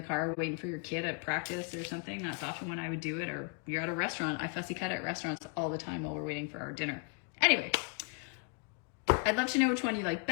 car waiting for your kid at practice or something. That's often when I would do it. Or you're at a restaurant. I fussy cut at restaurants all the time while we're waiting for our dinner. Anyway, I'd love to know which one you like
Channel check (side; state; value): right; quieter; 36.1 dB